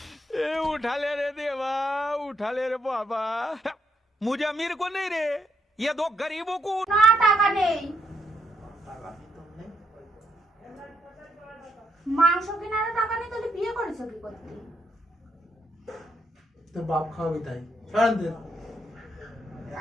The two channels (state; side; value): normal; both; correlation 0.77